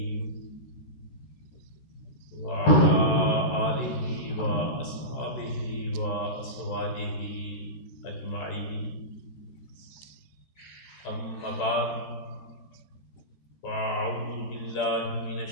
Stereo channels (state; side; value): late; right; 14 ms